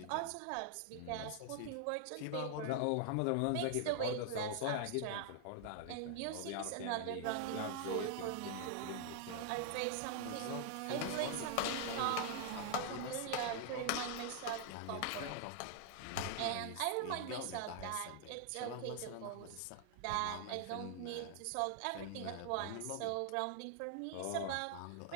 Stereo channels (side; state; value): both; different; correlation 0.00